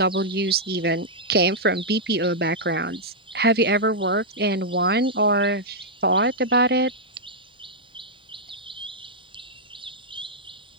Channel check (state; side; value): normal; both; correlation -0.07